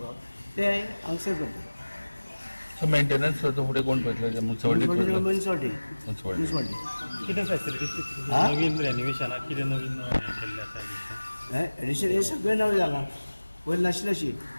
ते हांगसर करतात। सो मेंटेनन्स फुडें कोण पळयतलो? मुन्सिपालिटी कितें फॅसिलिटीज नवीन रेनोवेशनाक कितें नवीन केल्लें आसा? एडिशन हे सगळें नवें जालां, पयलीं नाशिल्लें अशी।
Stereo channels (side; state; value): both; inverted; correlation -1.00